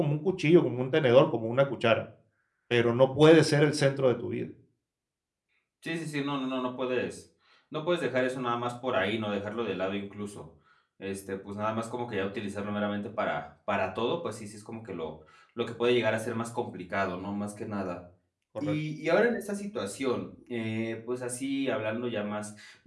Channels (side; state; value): both; identical; correlation 1.00